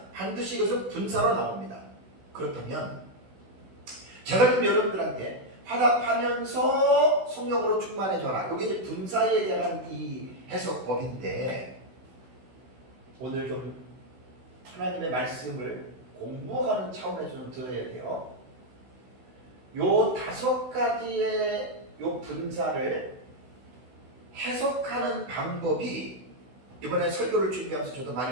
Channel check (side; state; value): left; late; 16 ms